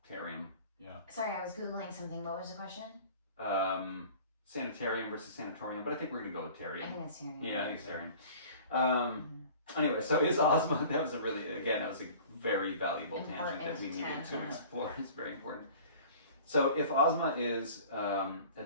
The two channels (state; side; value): inverted; both; correlation -0.45